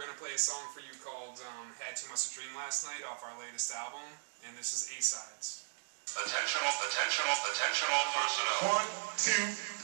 to play a song for you called Had Too Much to Dream Last Night off our latest album, and this is A-Sides. Attentional personnel. 1, 2,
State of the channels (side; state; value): left; silent; digital silence